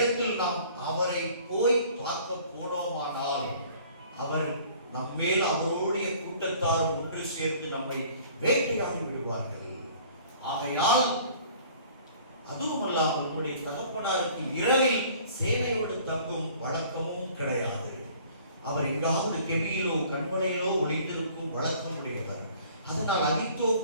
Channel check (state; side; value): inverted; both; correlation -0.52